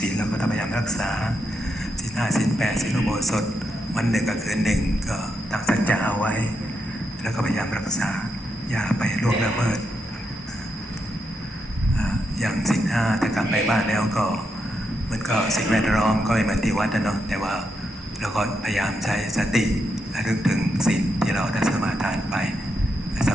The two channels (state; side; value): normal; both; correlation 0.83